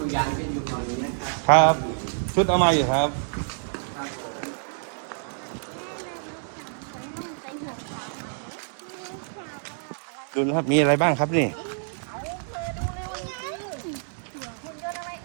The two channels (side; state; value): left; silent; digital silence